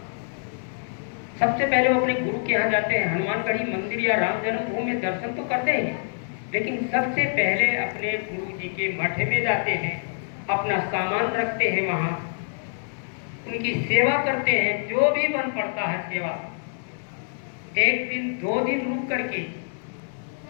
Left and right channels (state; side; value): silent; right; digital silence